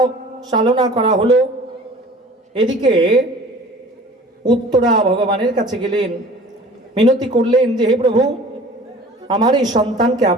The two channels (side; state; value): both; normal; correlation 0.45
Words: চালনা করা হলো। এদিকে উত্তরা ভগবানের কাছে গেলেন, মিনতি করলেন যে হে প্রভু, আমার এই সন্তানকে